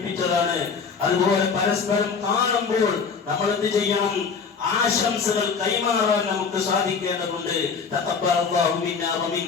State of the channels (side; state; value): right; quieter; 5.6 dB